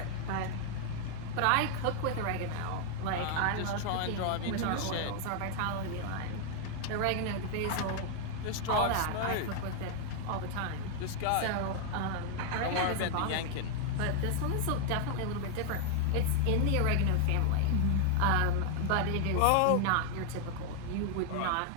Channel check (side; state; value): both; different; correlation 0.00